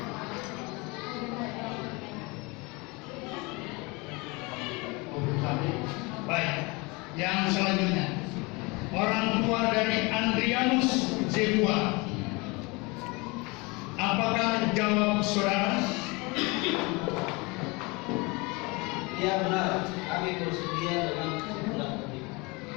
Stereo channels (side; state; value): right; quieter; 26.6 dB